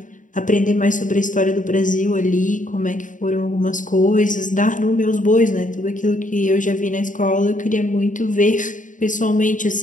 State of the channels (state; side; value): late; right; 0.37 ms